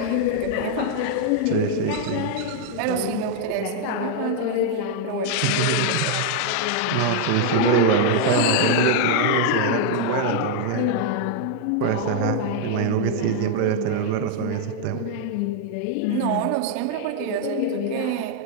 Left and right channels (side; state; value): both; different; correlation 0.00